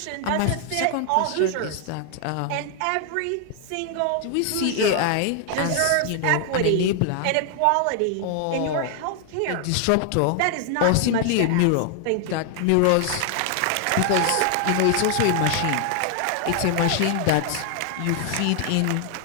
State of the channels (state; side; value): different; both; correlation 0.00